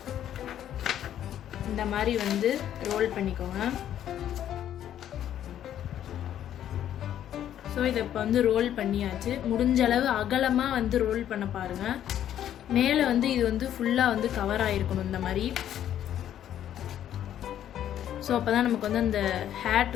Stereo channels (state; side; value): quieter; right; 10.9 dB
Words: இந்த மாதிரி ரோல் பண்ணிக்கோங்க. ஸோ இதை இப்போ ரோல் பண்ணியாச்சு. முடிஞ்ச அளவு அகலமாக ரோல் பண்ண பாருங்கள். மேலே இது ஃபுல்லாக கவர் ஆகிருக்கணும் இந்த மாதிரி. ஸோ அப்போ தான் நமக்கு அந்த ஹேட்